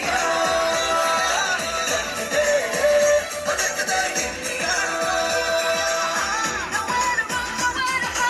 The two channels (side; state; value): both; identical; correlation 1.00